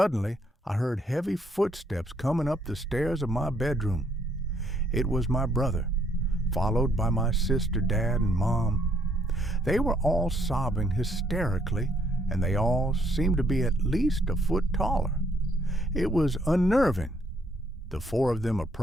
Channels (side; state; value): both; normal; correlation 0.69